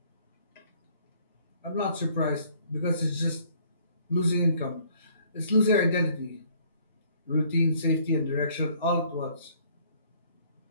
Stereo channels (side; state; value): both; inverted; correlation -0.60